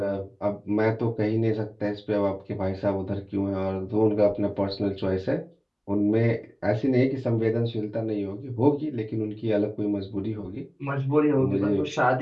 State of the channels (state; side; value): identical; both; correlation 1.00